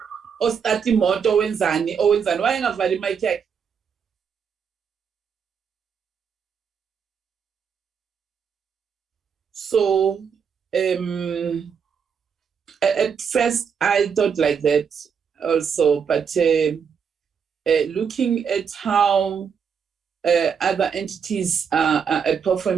ostart imoto wenzani wayengavali mic yakhe. So at first I thought like that also, but looking at how other entities are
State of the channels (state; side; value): quieter; left; 6.8 dB